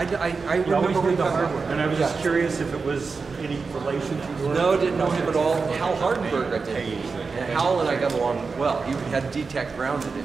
He always remember did the when hardware. And I was just curious if it was any relation to your... No, didn't know him at all. Hal Hardenberg I did. And Hal and I got along well. He had D-Tech grounded,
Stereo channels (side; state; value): left; quieter; 4.7 dB